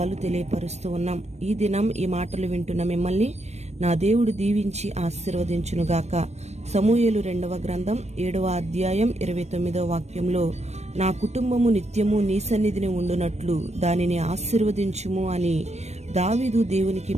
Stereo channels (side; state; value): left; late; 0.32 ms